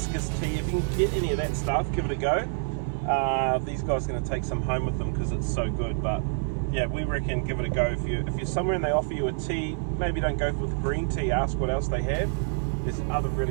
tea. If you can get any of that stuff, give it a go. These guys are going to take some home with them because it's so good, but yeah, we reckon give it a go. If you're somewhere and they offer you a tea, maybe don't go with green tea, ask what else they have. There's other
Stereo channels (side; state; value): left; silent; 60 dB below the other